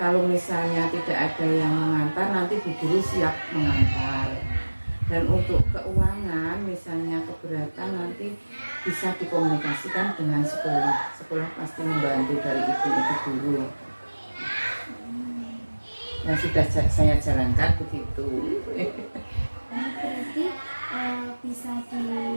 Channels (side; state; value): both; inverted; correlation -1.00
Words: misalnya tidak ada yang mengantar, nanti bu guru siap mengantar. Dan untuk keuangan misalnya keberatan nanti bisa dikomunikasikan dengan sekolah pasti membantu dari ibu-ibu guru. Yang sudah saya jalankan begitu. Berarti bisa